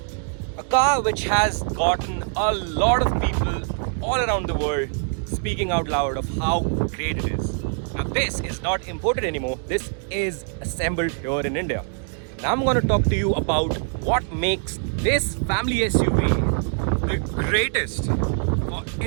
a car which has gotten a lot of people all around the world speaking out loud of how great it is. Now this is not imported anymore, this is assembled here in India. Now I'm going to talk to you about what makes this family SUV the greatest for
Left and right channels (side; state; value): left; silent; 58 dB below the other